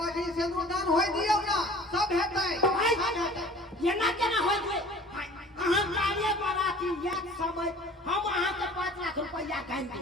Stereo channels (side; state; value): both; normal; correlation 0.47